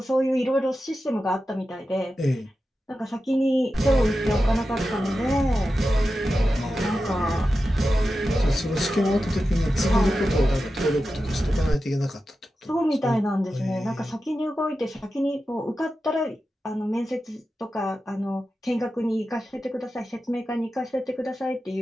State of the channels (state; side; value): normal; both; correlation 0.92